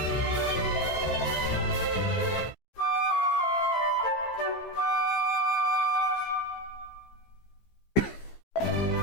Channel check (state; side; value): late; right; 15 ms